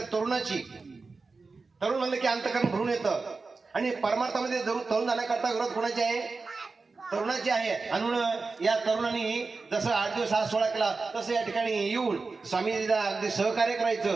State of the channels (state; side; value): quieter; left; 4.1 dB